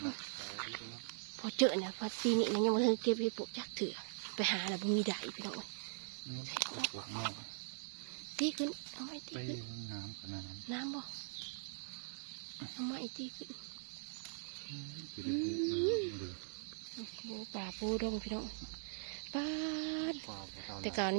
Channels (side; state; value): left; silent; digital silence